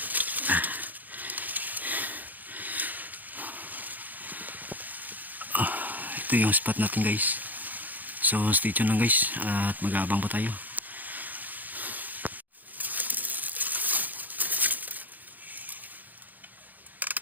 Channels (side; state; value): left; late; 0.083 ms